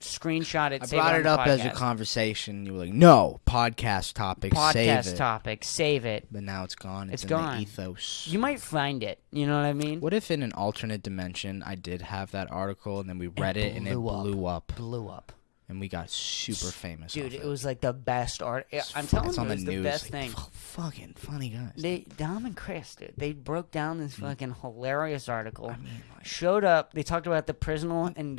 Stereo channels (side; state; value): right; silent; digital silence